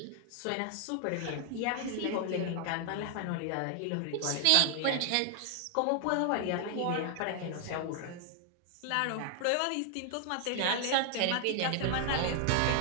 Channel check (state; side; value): different; both; correlation 0.00